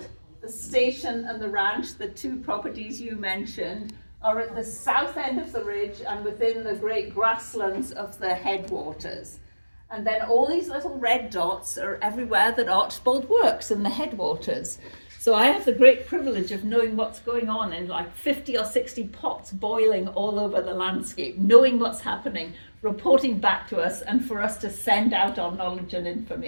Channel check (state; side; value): inverted; both; correlation -1.00